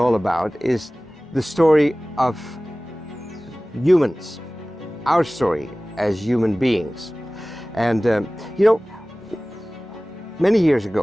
about is the story of humans, our story as human beings. And many years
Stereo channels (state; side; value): normal; both; correlation 0.98